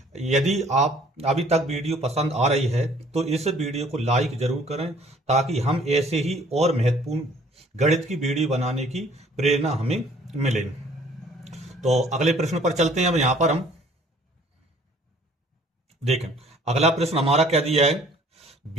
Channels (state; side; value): normal; both; correlation 0.56